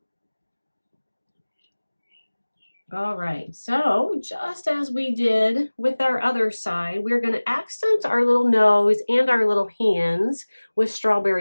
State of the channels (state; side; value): inverted; both; correlation -1.00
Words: All right, so just as we did with our other side, we're going to accent our little nose and our little hands with